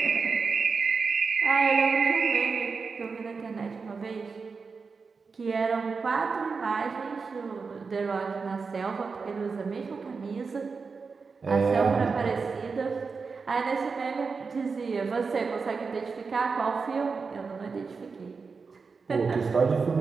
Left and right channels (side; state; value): left; quieter; 4.9 dB